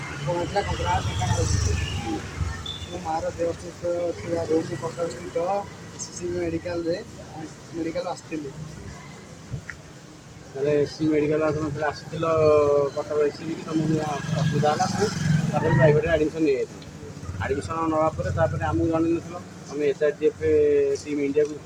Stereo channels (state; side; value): identical; both; correlation 1.00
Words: କଙ୍କଡ଼ା ଦୋକାନ ଅଛି। ମୋ ମାଆର ଦେହ ଅସୁସ୍ଥ ଥିବାରୁ ମୁଁ କଟକ ସ୍ଥିତ SCC ମେଡ଼ିକାଲ ଆସିଥିଲି। ତାହେଲେ ଏସି ମେଡ଼ିକାଲ ଆପଣ ଆସିଥିଲ କଟକ ଏସିବି କି ତୁମକୁ ଅସୁବିଧା ହେଲା ତାପରେ ପ୍ରାଇଭେଟରେ ଆଡ଼ମିସନ୍ ନେଇଯାଇଥିଲ। ଆଡ଼ମିସନ୍ ନେବା ପରେ ତାପରେ ଆମକୁ ଜଣେଇନଥିଲ, ତୁମେ SRGF ଟିମ୍ ଇଣ୍ଡିଆକୁ